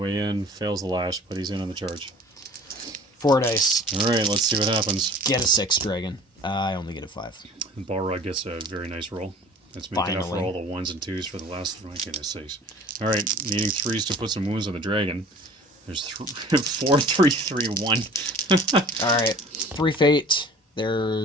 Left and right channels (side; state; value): both; normal; correlation 0.46